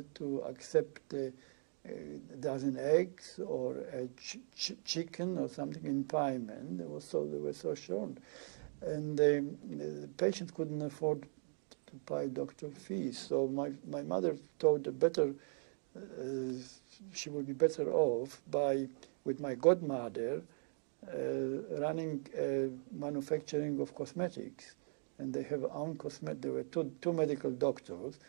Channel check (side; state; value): left; silent; 52 dB below the other